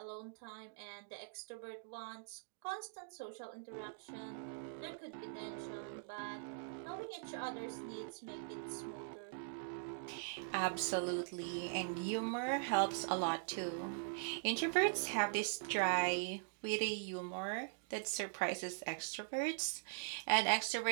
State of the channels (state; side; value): silent; left; digital silence